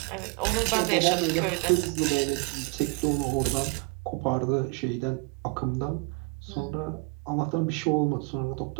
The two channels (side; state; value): left; quieter; 30.5 dB